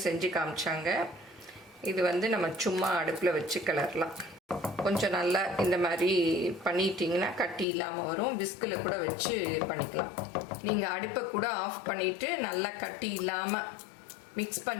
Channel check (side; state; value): right; drops out; at 7.7 s